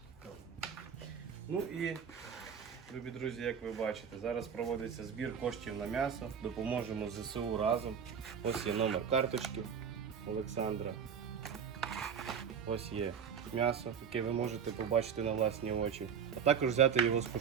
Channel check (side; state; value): left; quieter; 7.3 dB